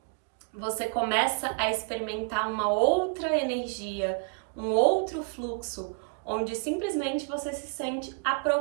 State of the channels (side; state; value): left; quieter; 36.4 dB